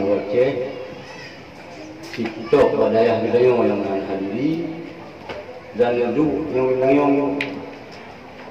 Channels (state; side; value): identical; both; correlation 1.00